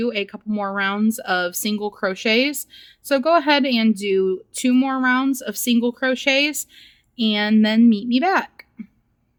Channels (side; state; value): both; identical; correlation 1.00